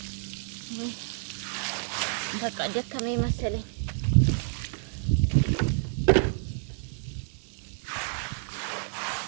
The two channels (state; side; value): silent; left; 58 dB below the other